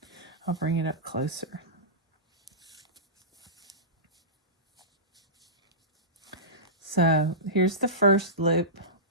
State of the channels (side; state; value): both; normal; correlation -0.20